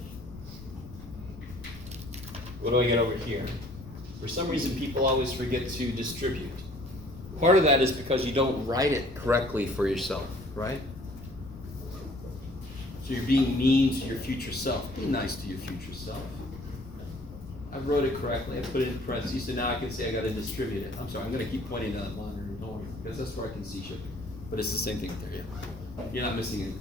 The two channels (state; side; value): noise; left; rumble, 15 dB below the sound